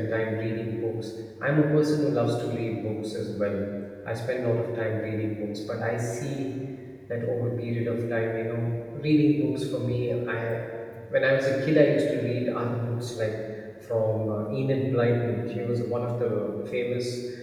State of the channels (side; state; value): both; identical; correlation 1.00